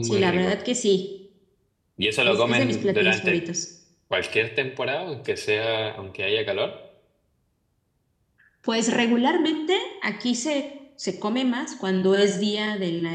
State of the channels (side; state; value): both; identical; correlation 1.00